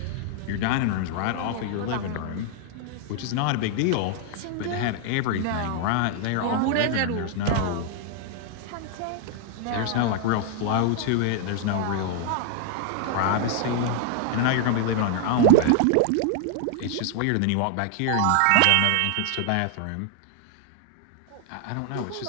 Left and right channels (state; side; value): different; both; correlation 0.00